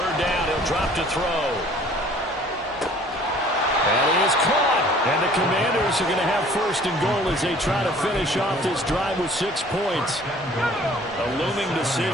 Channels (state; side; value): normal; both; correlation 0.53